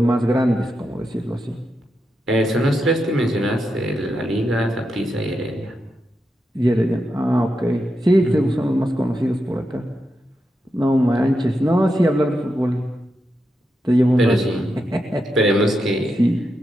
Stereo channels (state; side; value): normal; both; correlation 0.86